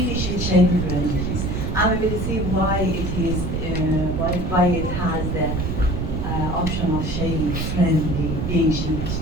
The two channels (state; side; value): noise; right; rumble, 2 dB below the sound